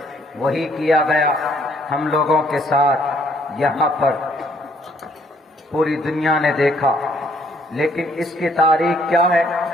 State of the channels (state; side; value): normal; both; correlation 0.66